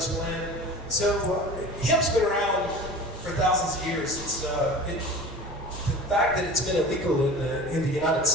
plan? So hemp's been around for thousands of years. It's the fact that it's been illegal in the United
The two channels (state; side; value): normal; both; correlation 0.38